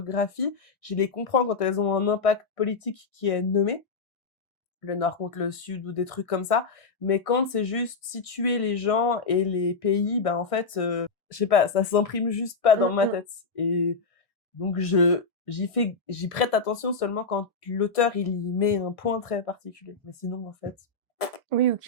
Je les comprends quand elles ont un impact politique qui est nommé, le nord contre le sud ou des trucs comme ça. Mais quand c'est juste situer les gens et les pays, ben en fait, je sais pas, ça s'imprime juste pas dans ma Mmh. tête. Et donc j'y prête attention seulement quand l'auteur, il y met un point très particulier. Mais sinon, en fait Oui, ou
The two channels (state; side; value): quieter; right; 4.1 dB